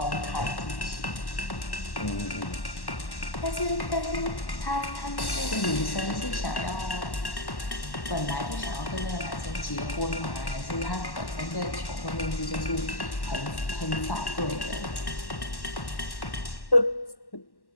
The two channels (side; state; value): right; late; 1.1 ms